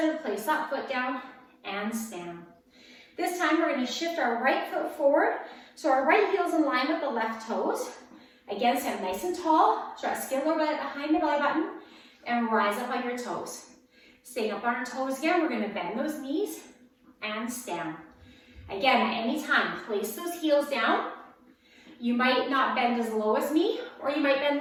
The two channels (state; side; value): identical; both; correlation 1.00